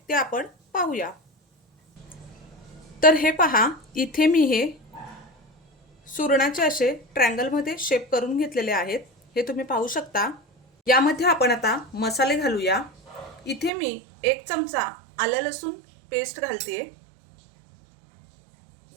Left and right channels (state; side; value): drops out; left; at 13.7 s